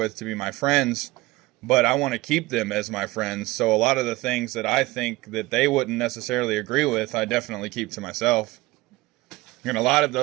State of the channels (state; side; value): quieter; left; 20.4 dB